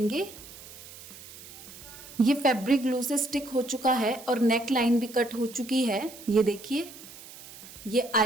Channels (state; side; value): noise; right; hiss, 17 dB below the sound